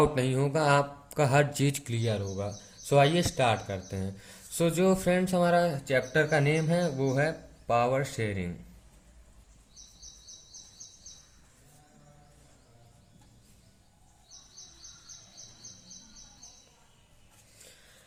नहीं होगा, आपका हर चीज़ क्लियर होगा। सो आइए स्टार्ट करते हैं। सो जो फ्रेंड्स हमारा चैप्टर का नेम है वो है पावर शेयरिंग।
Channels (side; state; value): both; identical; correlation 1.00